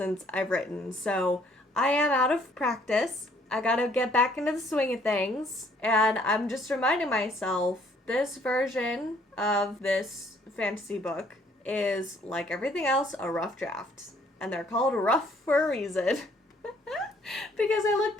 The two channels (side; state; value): both; normal; correlation 0.63